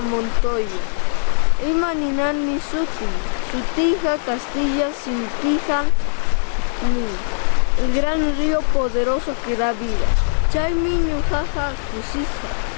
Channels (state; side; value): silent; right; digital silence